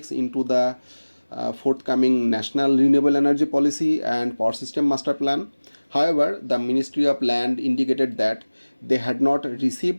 into the forthcoming National Renewable Energy Policy and Power System Master Plan. However, the Ministry of Land indicated that they had not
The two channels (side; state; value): both; inverted; correlation -1.00